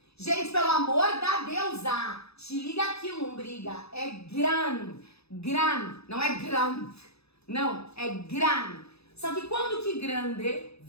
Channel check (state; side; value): late; right; 0.79 ms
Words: Gente, pelo amor da deusa, te liga aqui, lombriga, é gran. Gran, não é grand. Não, é gran. Só que quando que grande